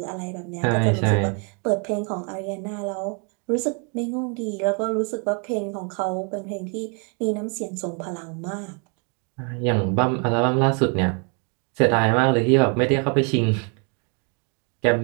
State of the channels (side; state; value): left; quieter; 36.7 dB